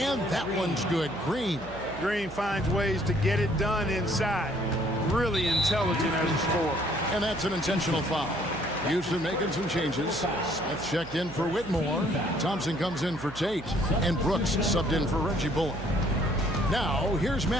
that one's good. Green Green finds ways to get it done inside. Really intelligent as a scorer. And that's an intentional foul. Houston making some changes. Smith checked in for Whitmore. Thompson comes in for Tate. And Brooks subbed in for Reggie Bullock. Now, here's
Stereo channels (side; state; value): right; noise; hum, 16 dB below the sound